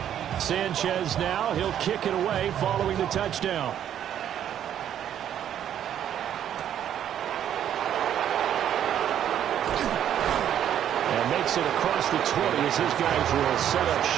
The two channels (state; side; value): quieter; left; 10.2 dB